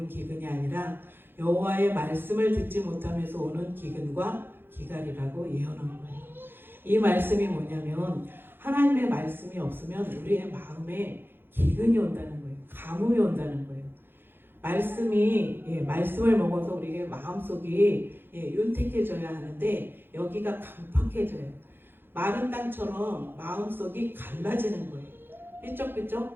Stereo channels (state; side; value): late; left; 0.10 ms